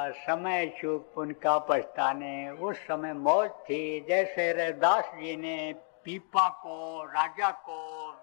समय चूक पुण्य का पछताने। उस समय मौज थी, जैसे रैदास जी ने पीपा को, राजा को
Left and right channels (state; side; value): silent; right; 57 dB below the other